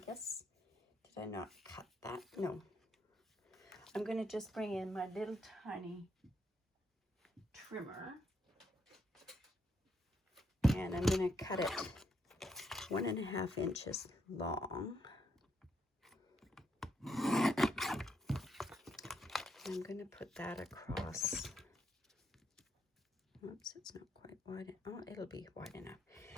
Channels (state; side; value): normal; both; correlation 0.77